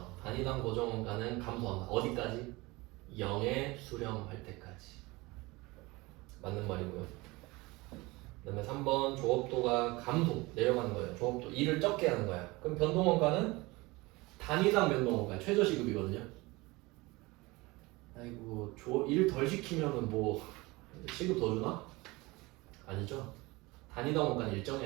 단위당 고정원가는 감소한다. 어디까지? 0에 수렴할 때까지. 맞는 말이고요. 그 다음에 3번. 조업도가 감소, 내려가는 거예요. 조업도 2를 적게 하는 거야. 그럼 변동원가는 단위당 변동원가, 최저시급이거든요. 아이고, 1 덜 시키면은 뭐 시급 더 주나? 아니죠. 단위당 원가는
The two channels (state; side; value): quieter; left; 22.7 dB